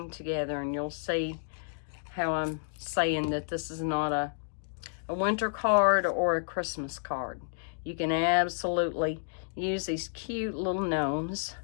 together, and you'll see how I'm saying that this is not a winter card or a Christmas card. You can absolutely use these cute little gnomes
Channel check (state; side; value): silent; right; digital silence